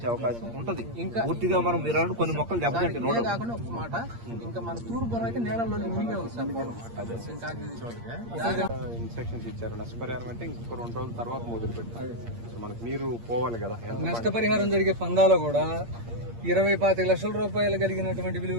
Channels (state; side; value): late; left; 8.6 ms